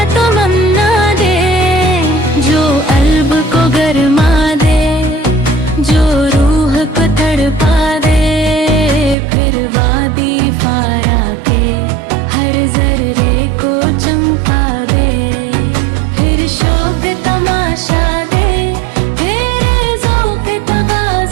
तमन्ना दे, जो अल्ब को गरमा दे, जो रूह को तड़पा दे। फिर वादी फारा के हर जर्रे को चमका दे, फिर शौक तमाशा दे, फिर ज़ौक़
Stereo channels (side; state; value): left; drops out; at 9.2 s